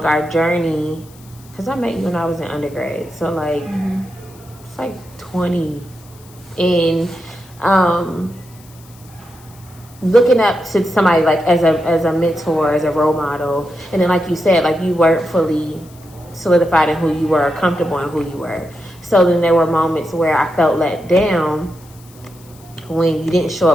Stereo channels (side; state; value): left; noise; hiss, 25 dB below the sound